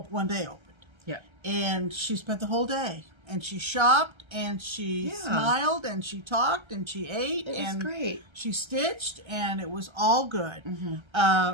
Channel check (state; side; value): late; left; 1.3 ms